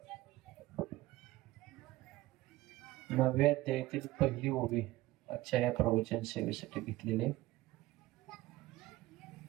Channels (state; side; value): quieter; left; 17.7 dB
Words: 9व्या अध्यायातील पहिली ओवी आजच्या या प्रवचन सेवेसाठी घेतलेले.